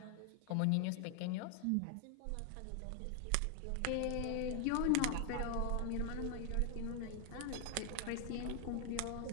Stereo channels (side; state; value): both; different; correlation 0.00